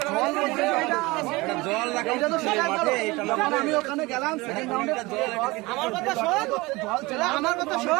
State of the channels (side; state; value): left; quieter; 22.5 dB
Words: জল লাগাই এটা তো মাঠে আমি ওখানে গেলাম সেকেন্ড রাউন্ডে আমার কথা শোন জল আমার কথা